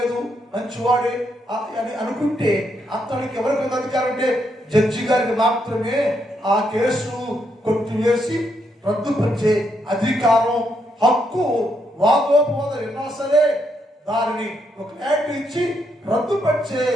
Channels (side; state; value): both; normal; correlation 0.77